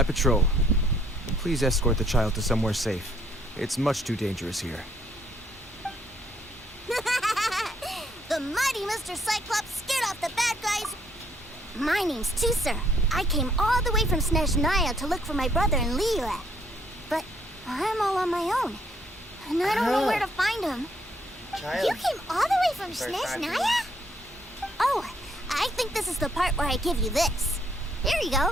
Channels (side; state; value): both; normal; correlation 0.68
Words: patrol. Please escort the child to somewhere safe. It's much too dangerous here. The mighty Mr. Cyclops scared off the bad guys. My name's Tusser. I came all the way from Snezhnaya to look for my brother in Liyue. But I'm all on my own. And I don't know where to find him. You came all the way from Snezhnaya? Oh, I think this is the part where I give you this. Here you